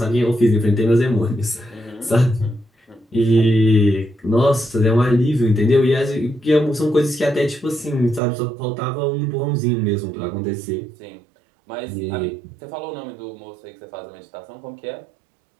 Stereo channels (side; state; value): left; drops out; at 8.2 s